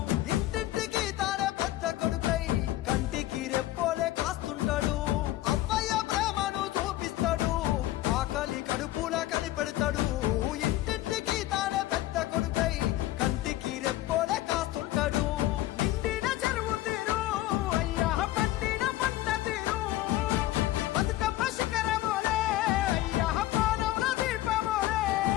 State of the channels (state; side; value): quieter; right; 15.5 dB